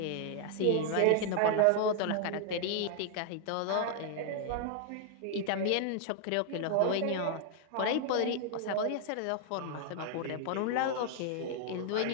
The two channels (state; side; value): different; both; correlation 0.00